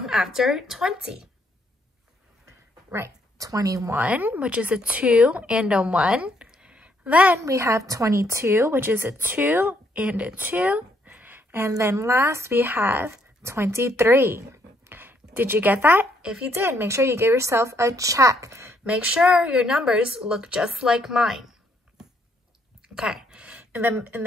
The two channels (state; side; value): normal; both; correlation 0.70